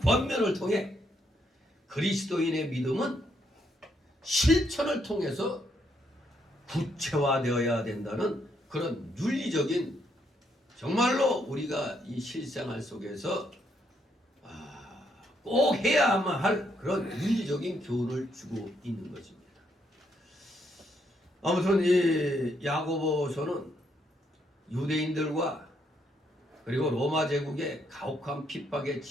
통해 그리스도인의 믿음은 실천을 통해서 구체화되어야 된다는 그런 윤리적인, 정말로 우리가 이 실생활 속에서 꼭 해야만 할 그런 윤리적인 교훈을 주고 있는 것입니다. 아무튼 이 야고보서는 유대인들과 그리고 로마 제국의 가혹한 핍박에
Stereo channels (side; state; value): both; normal; correlation 0.75